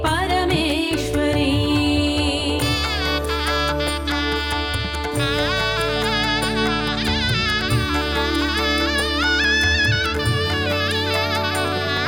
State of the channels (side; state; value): both; identical; correlation 1.00